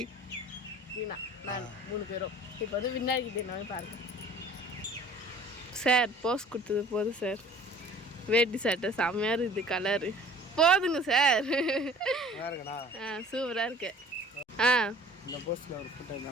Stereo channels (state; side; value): normal; both; correlation 0.49